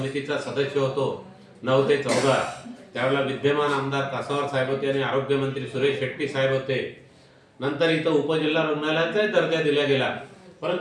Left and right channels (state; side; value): identical; both; correlation 1.00